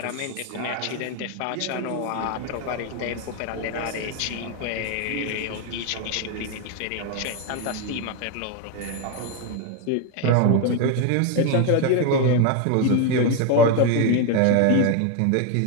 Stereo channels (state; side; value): different; both; correlation 0.01